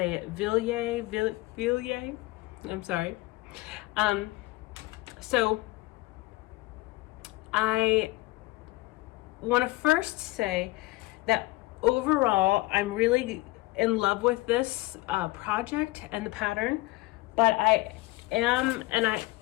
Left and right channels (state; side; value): quieter; right; 20.3 dB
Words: it. Villiers. I'm sorry. So I want to first say that overall, I'm really in love with this project and the pattern, but I am, and